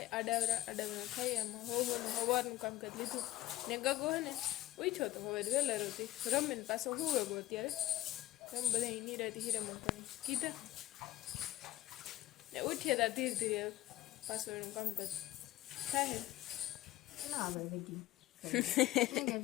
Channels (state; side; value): quieter; right; 15.7 dB